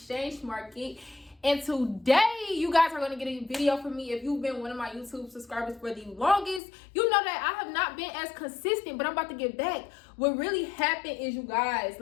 market. And today, you guys are going to get a video from me. If you've been one of my YouTube subscribers for the longest, you know that I have not been as consistent, but I'm about to get back. What really happened is, you guys,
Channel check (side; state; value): right; drops out; at 6.6 s